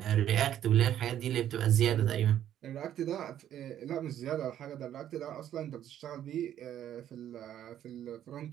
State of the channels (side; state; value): left; quieter; 11.0 dB